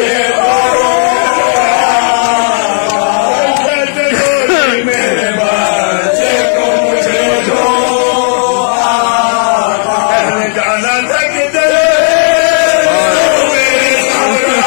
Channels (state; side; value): silent; right; 59 dB below the other